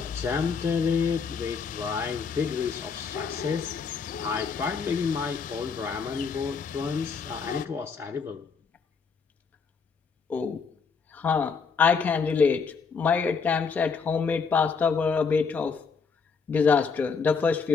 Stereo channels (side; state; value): right; quieter; 5.5 dB